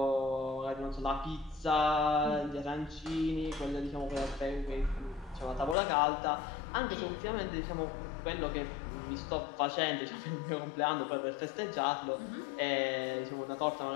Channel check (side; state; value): right; drops out; at 5.8 s